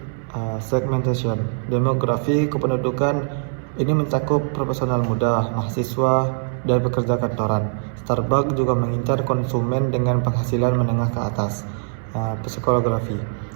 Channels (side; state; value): left; silent; 61 dB below the other